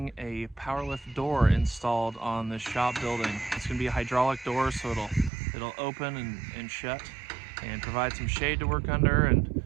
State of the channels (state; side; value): drops out; left; at 5.3 s